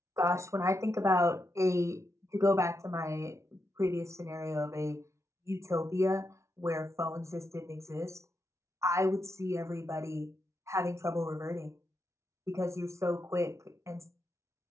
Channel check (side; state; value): left; late; 0.14 ms